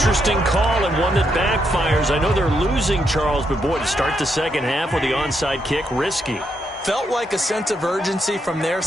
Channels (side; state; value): both; normal; correlation 0.79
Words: call and one that backfires. I know they're losing, Charles, but boy, to start the second half with the onside kick, risky. Felt like a sense of urgency from their